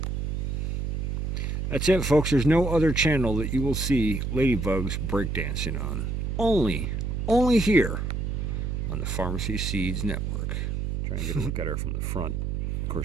That's it, folks. There's no other channel that you will see ladybugs breakdancing on. Only here on the Pharmacy Seeds Network. Try and get a look at her from the front. Of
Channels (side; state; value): right; noise; hum, 1 dB below the sound